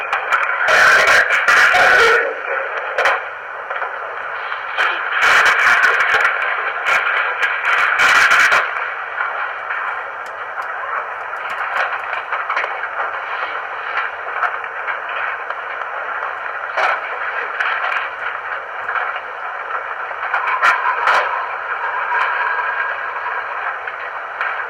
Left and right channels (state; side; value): identical; both; correlation 1.00